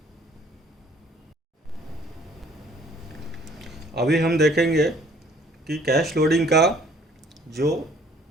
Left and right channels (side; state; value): both; normal; correlation 0.57